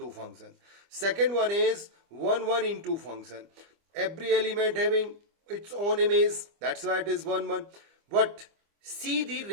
function. Second one is 1, 1 into function. Every element having its own image, that's why it is 1, 1. But see the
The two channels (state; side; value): late; left; 25 ms